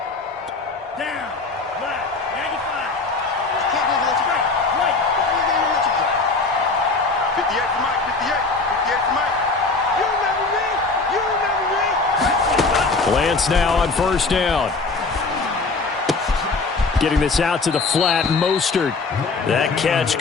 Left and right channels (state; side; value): quieter; right; 3.9 dB